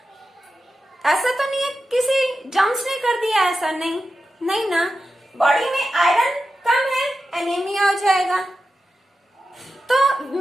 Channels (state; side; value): normal; both; correlation 0.91